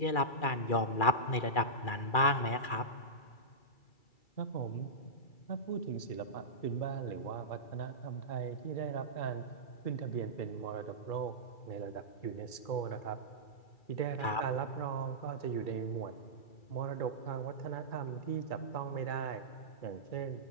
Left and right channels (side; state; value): right; late; 2.3 ms